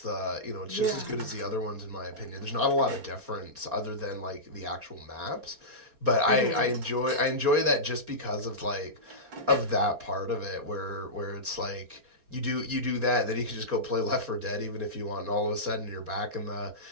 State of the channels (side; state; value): left; late; 4.3 ms